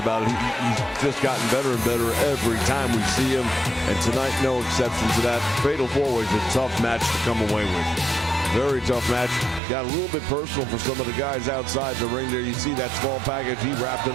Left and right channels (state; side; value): drops out; left; at 9.6 s